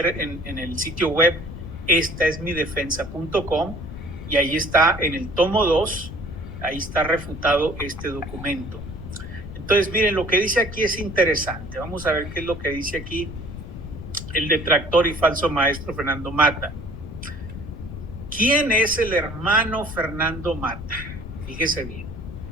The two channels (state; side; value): noise; left; rumble, 10 dB below the sound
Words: en el sitio web estaesmidefensa.com, y ahí está en el tomo 2, ahí está refutado este documento. Entonces, miren, lo que dice aquí es interesante. Vamos a ver qué es lo que dice aquí el detractor y falso maestro Fernando Mata. ¿Quién es el hermano Fernando Mata? Fíjese bien.